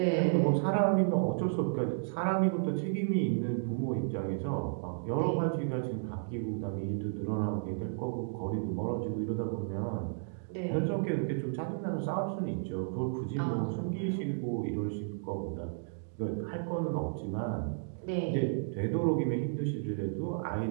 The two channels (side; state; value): left; silent; digital silence